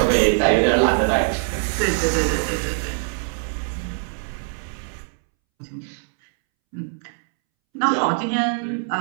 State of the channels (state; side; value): silent; left; 64 dB below the other